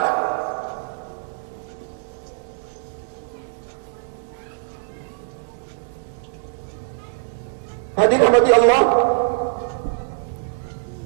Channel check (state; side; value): silent; left; digital silence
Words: Hadirin rahmati Allah,